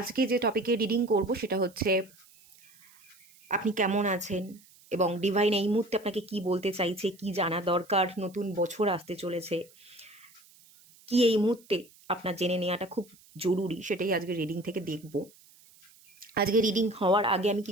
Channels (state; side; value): noise; right; hiss, 27 dB below the sound